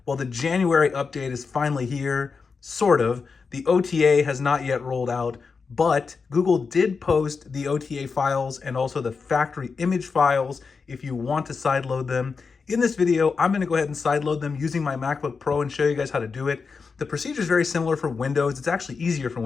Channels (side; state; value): right; quieter; 5.0 dB